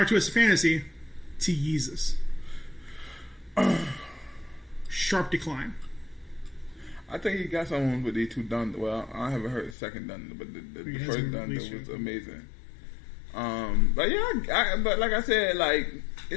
Twisted Fantasy to Yeezus? Sharp decline. I think he got someone with these two Dunder. Well, I haven't heard the second Dunder, but the first Dunder was amazing. But yeah, but like I said,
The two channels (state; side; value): drops out; right; at 9.8 s